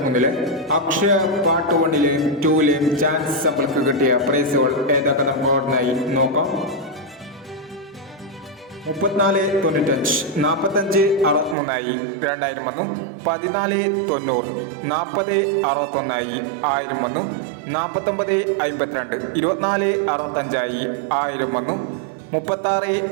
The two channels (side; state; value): left; drops out; at 11.6 s